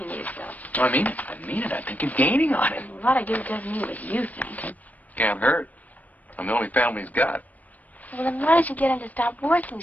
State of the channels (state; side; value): late; right; 0.075 ms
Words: yourself. I mean it. I mean it. I think you're gaining on it. A lot of good doesn't mean what you think. Can't hurt. I'm the only family he's got. Well, then why don't you get him to stop working